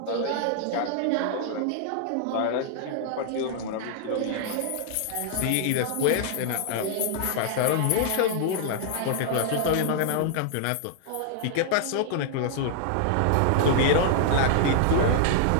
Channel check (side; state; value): both; different; correlation -0.01